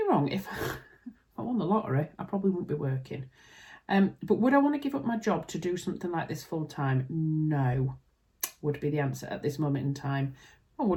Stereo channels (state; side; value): identical; both; correlation 1.00